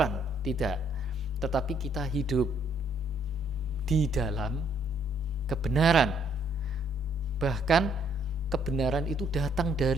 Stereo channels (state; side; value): normal; both; correlation 0.67